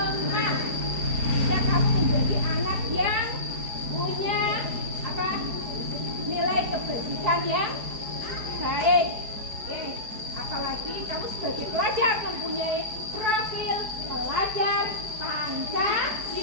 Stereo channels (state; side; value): late; left; 4.8 ms